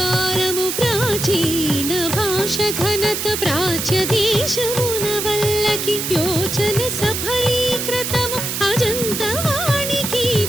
ప్రాచీన భాష ఘనత ప్రాచ్య దేశమున వల్లకి యోచన సఫలీకృతము అజంత వాణికి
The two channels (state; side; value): noise; right; hiss, 3 dB below the sound